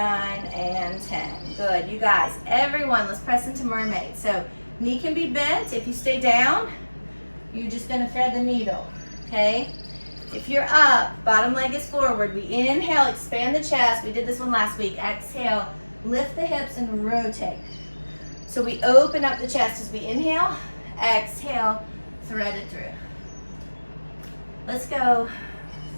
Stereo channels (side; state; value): both; inverted; correlation -1.00